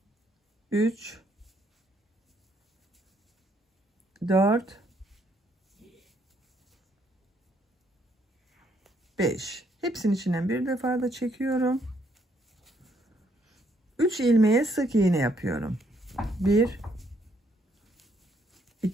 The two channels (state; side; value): normal; both; correlation 0.71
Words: 3 4 5. Hepsinin içinden bir defa da çekiyorum. 3 ilmeğe sık iğne yapıyorum. 1